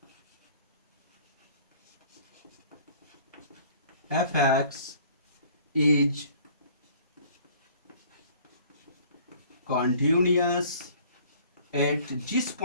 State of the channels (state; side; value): inverted; both; correlation -0.53